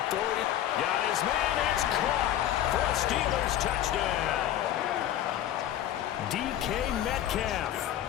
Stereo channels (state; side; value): quieter; right; 11.9 dB